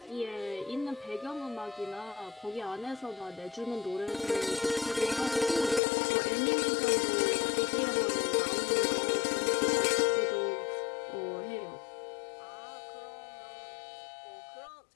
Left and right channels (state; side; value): drops out; right; at 5.8 s